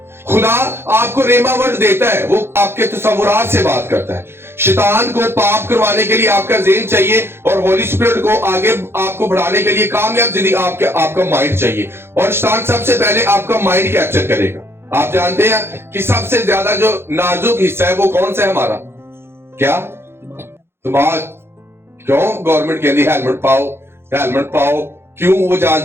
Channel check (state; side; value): late; left; 0.12 ms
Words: खुदा आपको रेमा वर्ड देता है, वो आपके तसव्वुरात से बात करता है। शैतान को पाप करवाने के लिए आपका ज़हन चाहिए और होली स्पिरिट को आगे आपको बढ़ाने के लिए कामयाब जिंदगी आपका माइंड चाहिए। और शैतान सबसे पहले आपका माइंड कैप्चर करेगा। आप जानते हैं कि सबसे ज्यादा जो नाजुक हिस्सा है वो कौन सा है हमारा? क्या? दिमाग। क्यों गवर्नमेंट कहती है हेलमेट पाओ? क्यों? वो